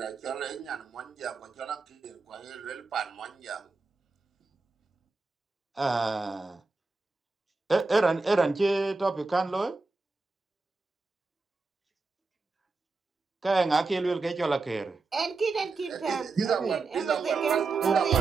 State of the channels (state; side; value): quieter; left; 3.8 dB